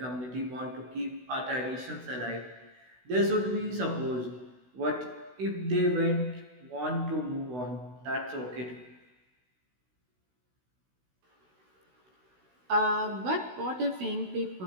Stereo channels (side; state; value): left; late; 16 ms